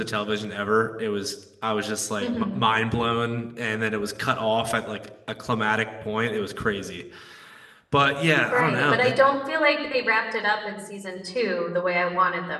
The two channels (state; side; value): identical; both; correlation 1.00